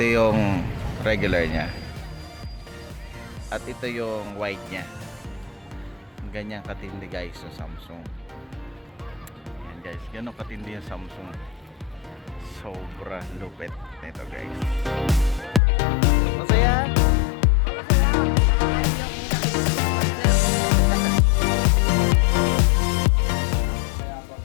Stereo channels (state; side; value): drops out; right; at 15.6 s